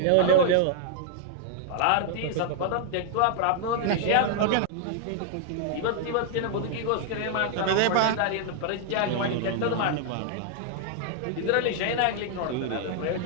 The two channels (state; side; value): different; both; correlation 0.00